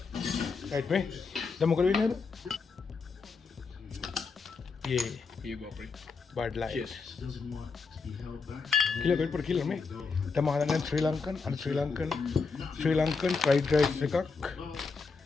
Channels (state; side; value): quieter; right; 4.7 dB